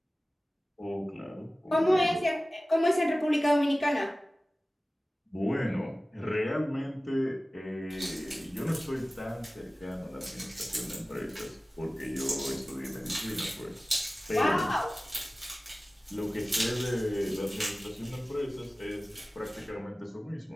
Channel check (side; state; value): both; normal; correlation 0.97